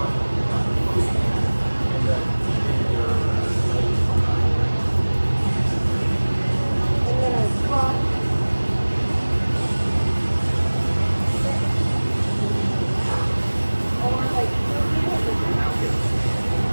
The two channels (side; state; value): both; inverted; correlation -1.00